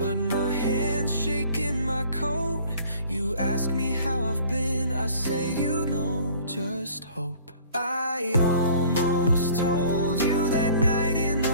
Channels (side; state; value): both; inverted; correlation -0.51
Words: my hand's shaking my coat. You ask me how I've been, I say you know, just hope. I almost told you that night in